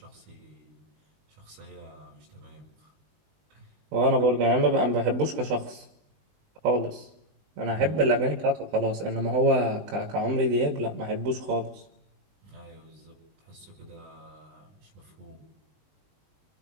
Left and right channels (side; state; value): left; late; 20 ms